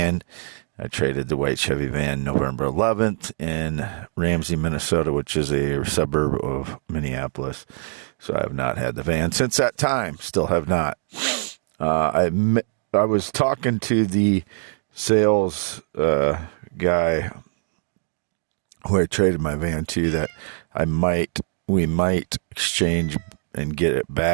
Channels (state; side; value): silent; left; digital silence